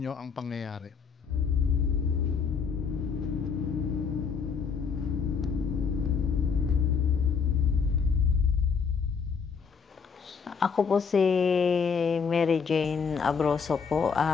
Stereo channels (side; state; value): right; quieter; 6.0 dB